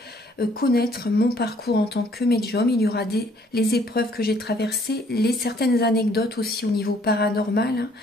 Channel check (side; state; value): both; normal; correlation 0.62